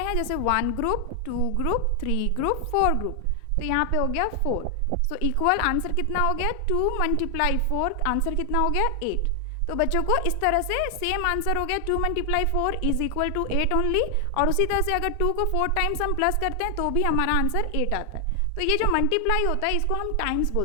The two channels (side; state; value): both; different; correlation 0.00